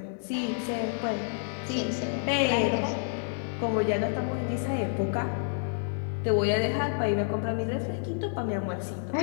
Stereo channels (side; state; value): right; silent; digital silence